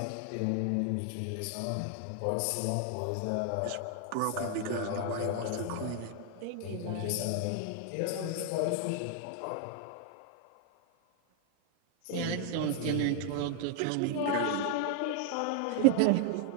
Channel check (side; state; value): both; different; correlation 0.00